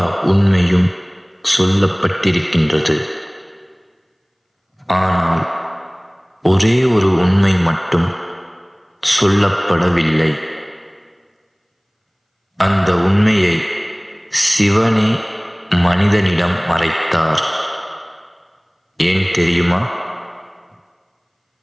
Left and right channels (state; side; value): identical; both; correlation 1.00